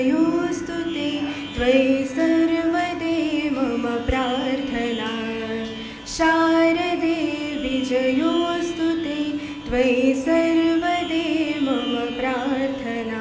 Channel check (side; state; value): both; identical; correlation 1.00